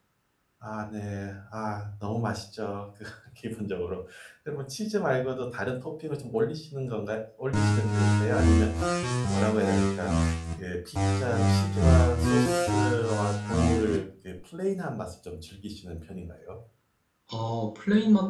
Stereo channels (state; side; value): identical; both; correlation 1.00